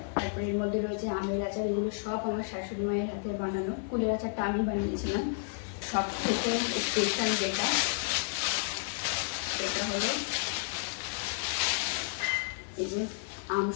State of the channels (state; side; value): silent; right; 57 dB below the other